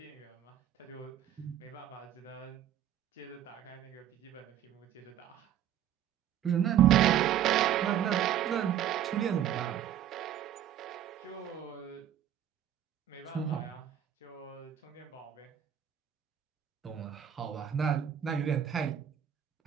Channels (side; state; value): left; quieter; 10.5 dB